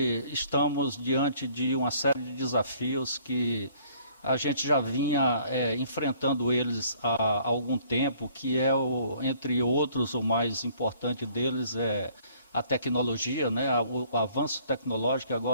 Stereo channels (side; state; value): both; inverted; correlation -0.59